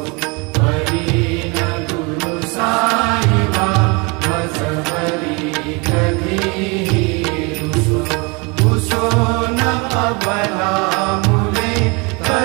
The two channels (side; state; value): left; quieter; 29.2 dB